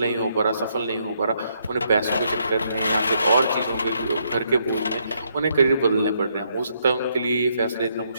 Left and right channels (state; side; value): inverted; both; correlation -0.74